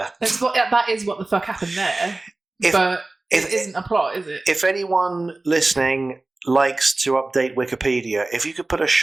is what the fuck happened there. But it isn't a plot, is it? If anyone listening likes to update Wikipedia, if you could put a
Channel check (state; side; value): quieter; left; 3.1 dB